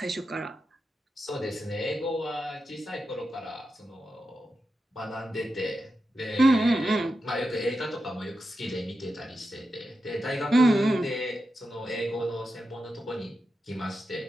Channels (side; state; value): both; normal; correlation 0.89